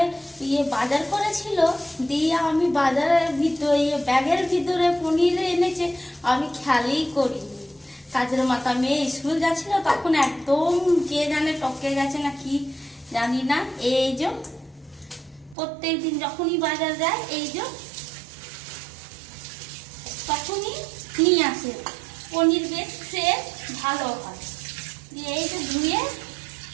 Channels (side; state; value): left; drops out; at 15.6 s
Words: বাজার করেছিল, দিয়ে আমি বাজারের ভিতরে ব্যাগের ভিতরে পনির এনেছে, আমি খেয়ালই করিনি। কাজের মাথা মেয়ে স্কুল যাচ্ছিল, তখন একদম কে জানে টপকে গেছে না কি জানি না। এই যে প্রত্যেক দিন যখনই বাজার যায় এই যে তখনই নিয়ে আসে পনির, বেশ ফ্রেশ ভালো হয়। দিয়ে এই যে ধুয়ে